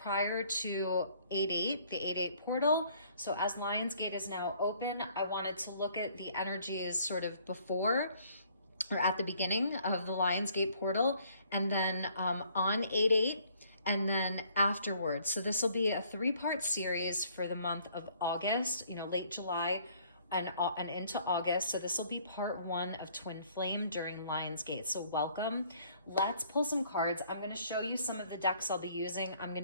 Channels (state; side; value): inverted; both; correlation -0.61